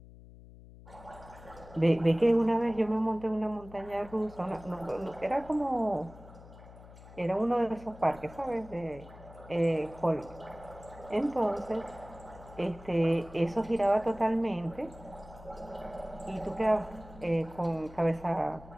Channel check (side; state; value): left; noise; hum, 19 dB below the sound